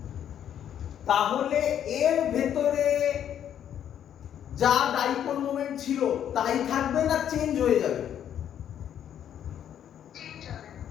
তাহলে এর ভেতরে যা ডাইপোল মোমেন্ট ছিল তাই থাকবে না চেঞ্জ হয়ে যাবে?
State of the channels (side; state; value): right; quieter; 9.8 dB